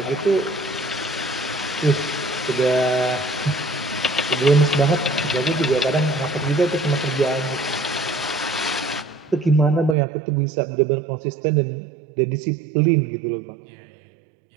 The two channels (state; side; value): drops out; left; at 10.0 s